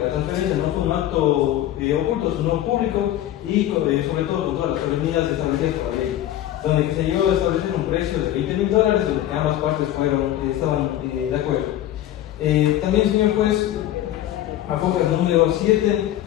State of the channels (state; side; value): quieter; right; 12.9 dB